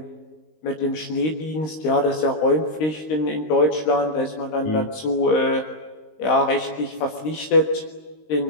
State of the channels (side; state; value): right; late; 19 ms